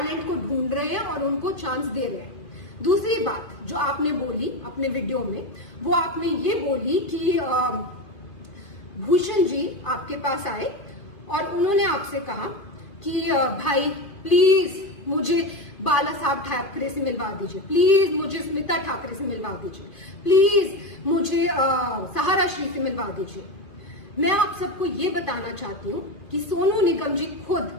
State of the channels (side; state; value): right; late; 2.5 ms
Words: को ढूंढ रहे हैं और उनको चांस दे रहे हैं। दूसरी बात जो आपने बोली अपने वीडियो में, वो आपने ये बोली कि भूषण जी आपके पास आए और उन्होंने आपसे कहा कि भाई प्लीज मुझे बाला साहब ठाकरे से मिलवा दीजिए, प्लीज मुझे स्मिता ठाकरे से मिलवा दीजिए, प्लीज मुझे सहारा श्री से मिलवा दीजिए। मैं आप सबको ये बताना चाहती हूँ कि सोनू निगम जी खुद